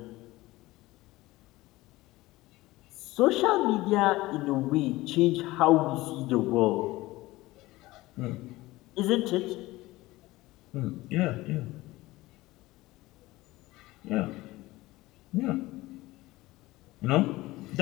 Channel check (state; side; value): quieter; right; 19.0 dB